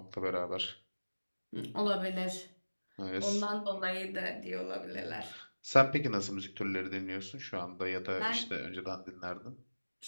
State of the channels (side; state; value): both; inverted; correlation -1.00